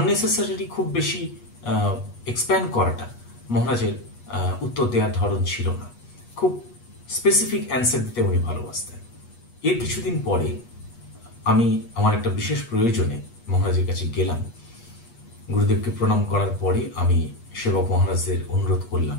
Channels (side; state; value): right; late; 8.3 ms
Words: খুব বেশি এক্সপ্যান্ড করাটা মহারাজের উত্তর দেওয়ার ধরন ছিল না। খুব স্পেসিফিক অ্যান্সার দিতে উনি ভালোবাসতেন। এর কিছুদিন পরে আমি আমার একটা বিশেষ প্রয়োজনে মহারাজের কাছে গেলাম। গুরুদেবকে প্রণাম করার পরে আমি সেবক মহারাজের অনুরোধ করলাম